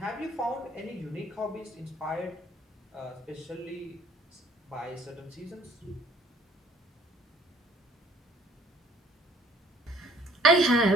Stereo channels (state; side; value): normal; both; correlation 0.57